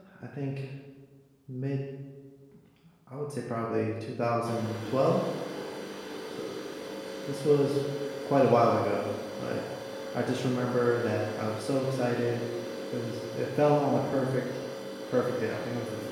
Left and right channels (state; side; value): identical; both; correlation 1.00